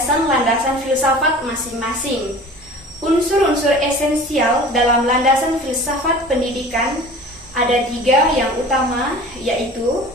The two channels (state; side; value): normal; both; correlation 0.42